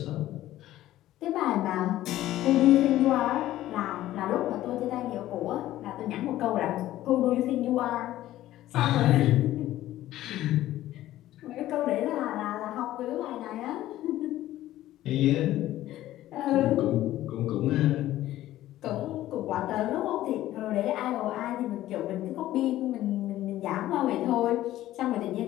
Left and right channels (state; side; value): quieter; right; 14.4 dB